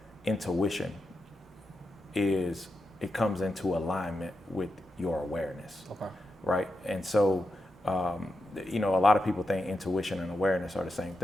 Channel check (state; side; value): normal; both; correlation 0.88